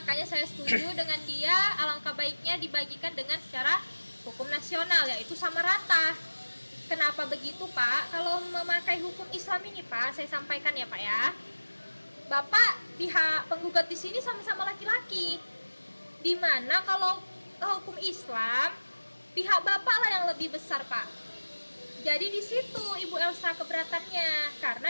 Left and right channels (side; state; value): both; inverted; correlation -1.00